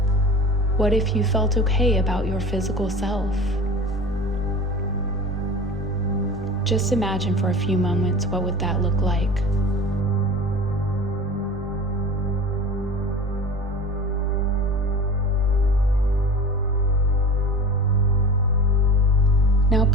What if you felt okay about your physical self? Just imagine for a few moments, what would that look like? Now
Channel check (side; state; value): both; normal; correlation 0.36